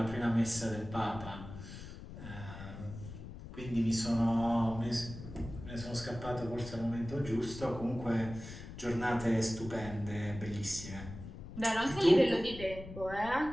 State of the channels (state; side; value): noise; left; rumble, 12 dB below the sound